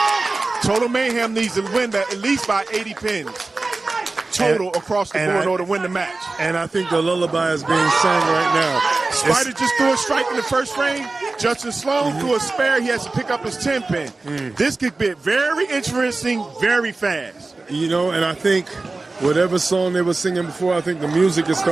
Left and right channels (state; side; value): quieter; left; 3.4 dB